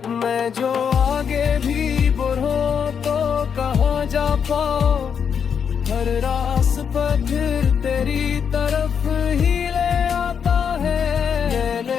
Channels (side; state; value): right; quieter; 7.2 dB